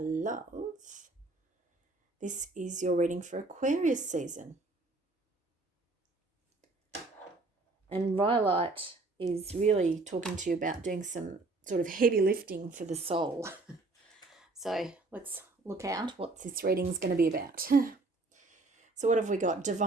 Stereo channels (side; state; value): left; quieter; 3.2 dB